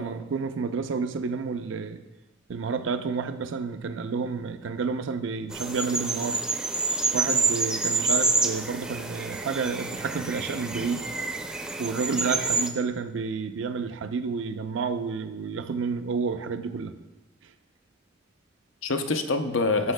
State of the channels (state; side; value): quieter; left; 3.1 dB